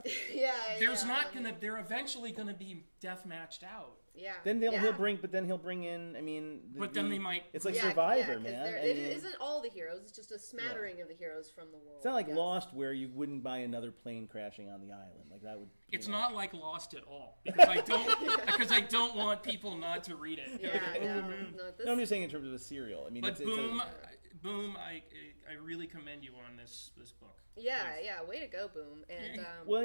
They're eventually gonna be deathmatched out. Yeah. Then he'll bring in. They might. It's like Survivor, man. It isn't all the heroes. It's just a smattering of the heroes from the world. It's not like Lost, where you wouldn't buy another plane crashing on the island. That would. It's not like Lost at all because I don't want people not to read it. No, I'm just saying in terms of a serial. But Boom, I really commend you on this book. Yeah, way to go, Boom. And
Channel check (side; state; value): both; inverted; correlation -1.00